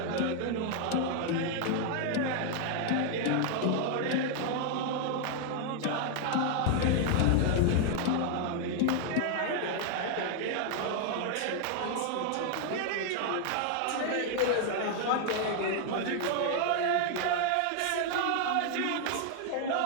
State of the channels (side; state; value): both; different; correlation 0.00